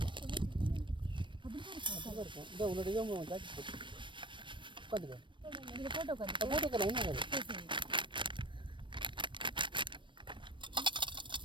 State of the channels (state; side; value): late; left; 0.24 ms